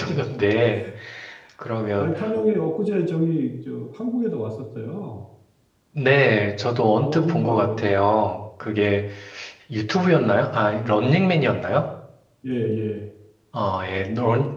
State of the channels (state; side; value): identical; both; correlation 1.00